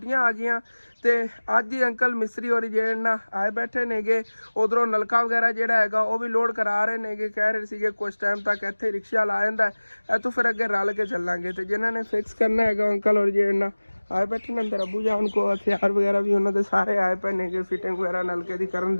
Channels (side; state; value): both; inverted; correlation -1.00